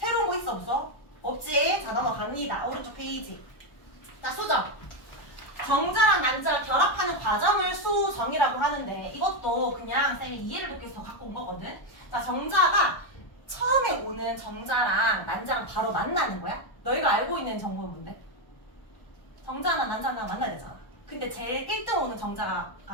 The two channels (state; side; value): late; right; 1.2 ms